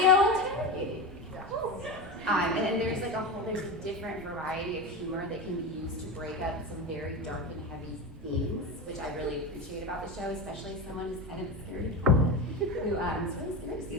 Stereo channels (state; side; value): normal; both; correlation 0.21